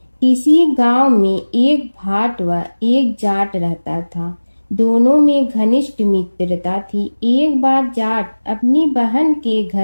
किसी गांव में एक भाट व एक जाट रहता था। दोनों में घनिष्ठ मित्रता थी। एक बार जाट अपनी बहन के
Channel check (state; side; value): inverted; both; correlation -1.00